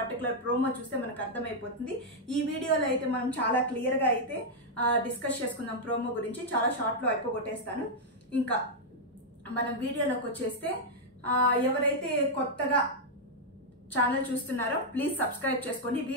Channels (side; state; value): both; normal; correlation -0.03